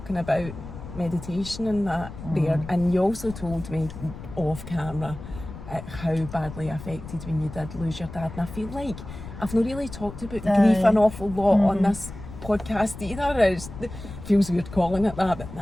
about meditation and that there, and you also told me off camera how badly affected when you did lose your dad, and I feel like I've not really talked about grief an awful lot on this podcast either. It feels weird calling it that, but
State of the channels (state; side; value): noise; left; rumble, 12 dB below the sound